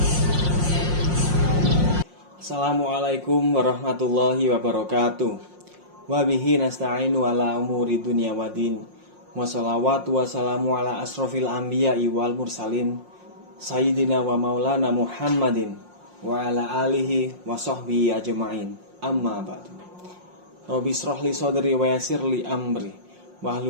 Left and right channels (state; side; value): late; left; 5.6 ms